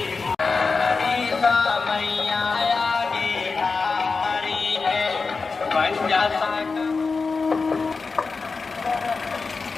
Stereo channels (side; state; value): right; quieter; 4.5 dB